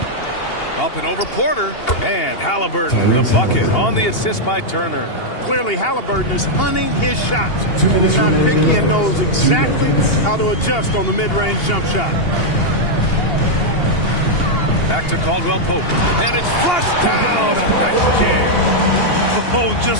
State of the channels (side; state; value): right; late; 2.8 ms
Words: Up and over Porter. And Halliburton, the bucket on the assist by Turner. Clearly, Halliburton is hunting his shots. He's not picky and knows exactly how to adjust on the mid-range jump shot. Back to Caldwell Pope. And it's flushed down. A nice jam. Oh,